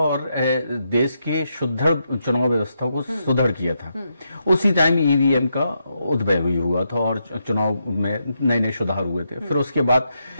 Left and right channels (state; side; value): inverted; both; correlation -0.82